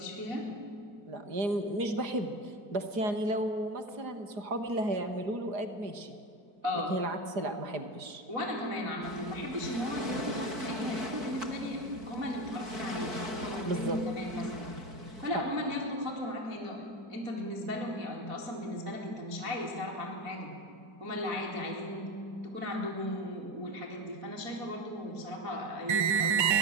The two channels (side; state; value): left; late; 4.6 ms